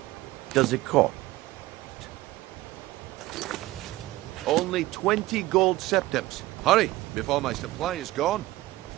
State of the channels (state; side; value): quieter; left; 17.7 dB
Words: does it cost? Only 20 gold septims. Hurry, before my supply is gone.